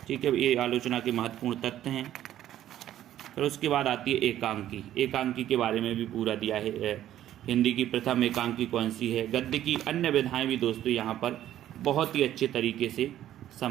ठीक है। ये आलोचना के महत्वपूर्ण तथ्य हैं। फिर उसके बाद आती है एकांकी के बारे में भी पूरा दिया है। हिंदी की प्रथम एकांकी कौन सी है। गद्य की अन्य विधाएं भी दोस्तों यहाँ पर बहुत ही अच्छे तरीके से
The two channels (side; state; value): left; quieter; 12.2 dB